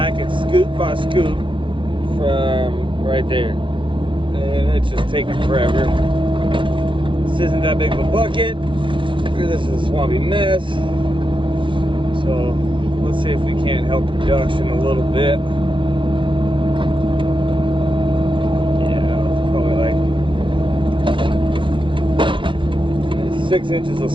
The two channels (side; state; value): left; late; 0.24 ms